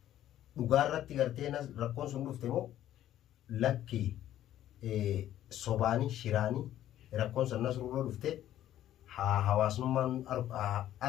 dhugaa irratti gartee rakkoon sun dhufte moo lakkii sobaanii shiraanii rakkoon sun nasruurra dhufte hawaasummaan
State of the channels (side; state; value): right; quieter; 12.4 dB